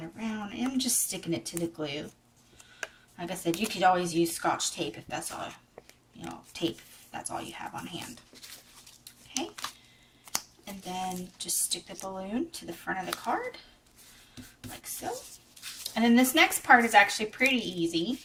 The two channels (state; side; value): identical; both; correlation 1.00